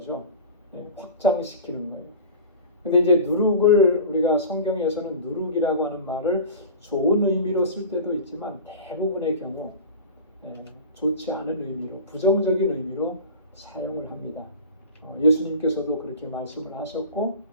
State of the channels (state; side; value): inverted; both; correlation -0.34